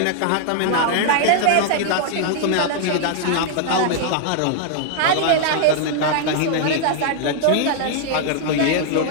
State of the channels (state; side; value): different; both; correlation 0.00